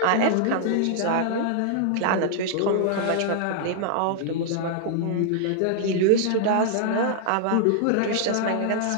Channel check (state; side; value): different; both; correlation -0.01